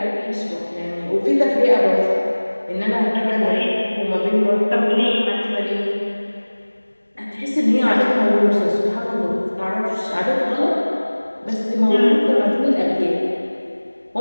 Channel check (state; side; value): inverted; both; correlation -1.00